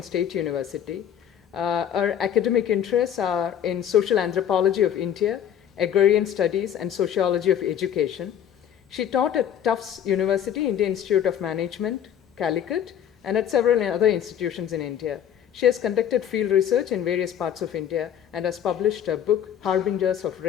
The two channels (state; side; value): quieter; right; 9.6 dB